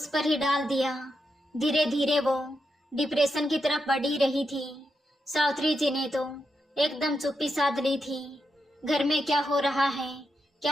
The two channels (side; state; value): both; normal; correlation 0.85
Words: पर ही डाल दिया। धीरे धीरे वो डिप्रेशन की तरफ बढ़ ही रही थी। सावित्री जी ने तो एकदम चुप्पी साध ली थी। घर में क्या हो रहा है